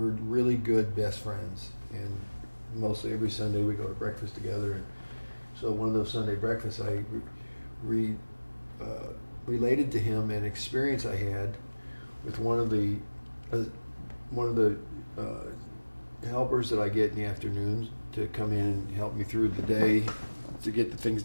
really good best friends, and mostly every Sunday we go to breakfast together. And so one of those Sunday breakfasts, I related to him an experience I had with one of the helpers that I get in the afternoons to come in and help me through the day to get the things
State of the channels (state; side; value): inverted; both; correlation -1.00